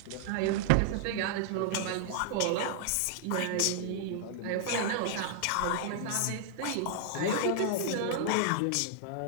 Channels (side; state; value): both; different; correlation -0.01